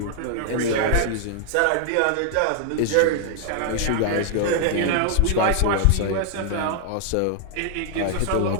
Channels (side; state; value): both; different; correlation 0.00